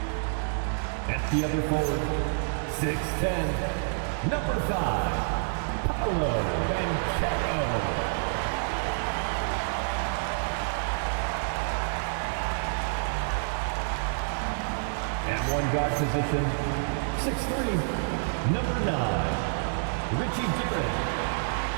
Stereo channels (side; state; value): left; silent; digital silence